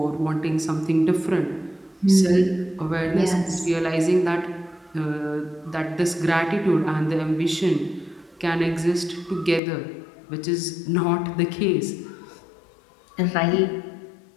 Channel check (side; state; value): right; drops out; at 9.6 s